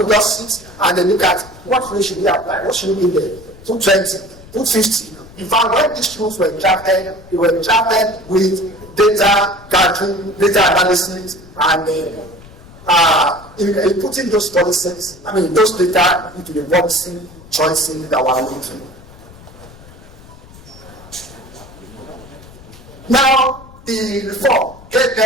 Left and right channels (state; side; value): noise; left; rumble, 20 dB below the sound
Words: just sit and they look at what rate should we apply, what should we be there, 220, 250. In fact, when these rules were drafted, they were drafted with data gathering, data analysis, and in putting those policies, those data into the policy choices that we're making. Now, the reform gave